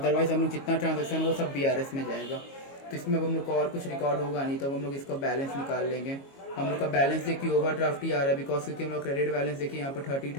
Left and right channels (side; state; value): right; late; 22 ms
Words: हम लोग जितना ट्रांजेक्शन वो सब BRS में जाएगा। तो इसमें अब हम लोग को और कुछ रिकॉर्ड होगा नहीं, तब हम लोग इसका बैलेंस निकाल लेंगे। हम लोग का बैलेंस देखिए ओवरड्राफ्ट ही आ रहा है, बिकॉज क्योंकि हम लोग क्रेडिट बैलेंस देखिए यहाँ पर